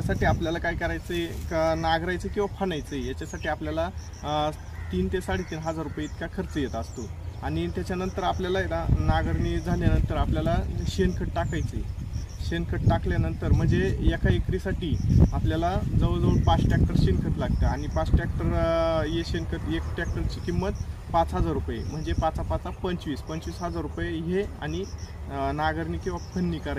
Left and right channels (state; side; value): identical; both; correlation 1.00